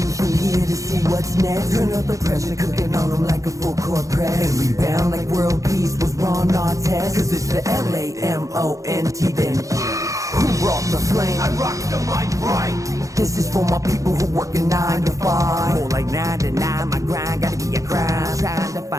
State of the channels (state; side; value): late; left; 0.16 ms